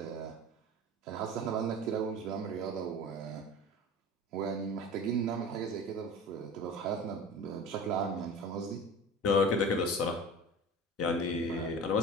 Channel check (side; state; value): both; normal; correlation 0.36